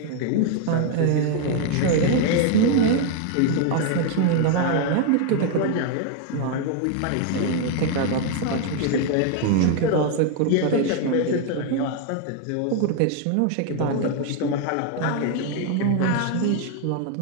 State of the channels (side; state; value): both; different; correlation 0.01